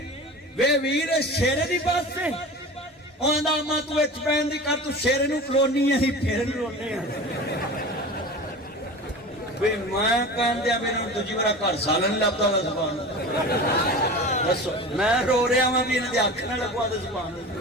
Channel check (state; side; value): normal; both; correlation 0.33